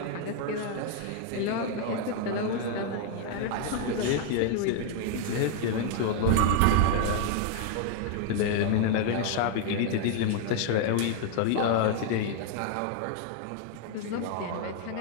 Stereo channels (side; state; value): both; different; correlation 0.00